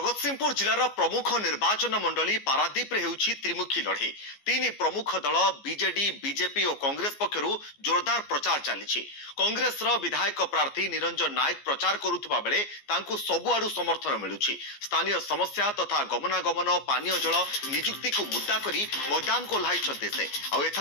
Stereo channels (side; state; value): right; late; 14 ms